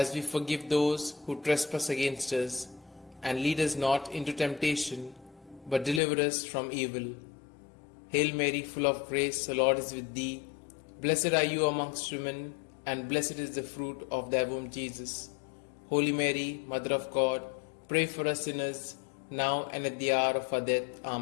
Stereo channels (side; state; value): right; drops out; at 6.0 s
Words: we forgive those who trespass against us. And lead us not into temptation, but deliver us from evil. Hail Mary, full of grace, the Lord is with thee. Blessed are you amongst women, and blessed is the fruit of thy womb, Jesus. Holy Mary, Mother of God, pray for us sinners, now and at the hour of our death.